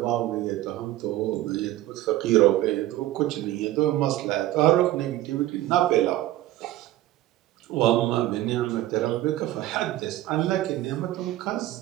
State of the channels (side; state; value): left; quieter; 15.2 dB